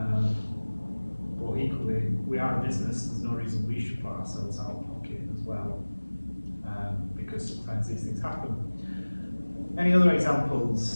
But equally, we are a business, there's no reason we should put ourselves out of pocket as well, because sometimes these things happen. Any other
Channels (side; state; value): both; inverted; correlation -1.00